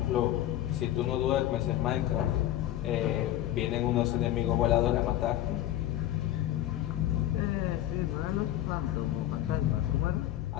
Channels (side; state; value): right; quieter; 13.3 dB